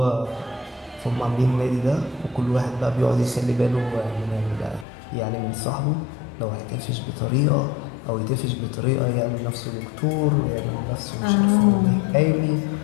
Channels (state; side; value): drops out; right; at 4.9 s